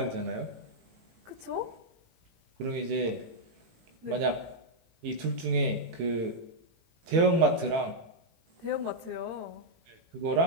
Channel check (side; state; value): left; late; 18 ms